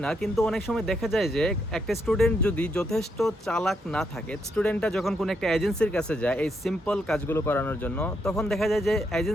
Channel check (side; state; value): both; normal; correlation 0.78